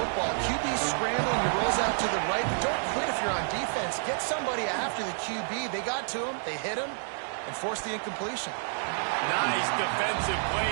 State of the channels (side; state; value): left; silent; digital silence